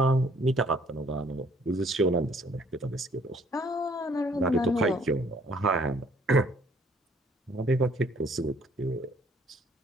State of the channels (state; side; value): normal; both; correlation 0.61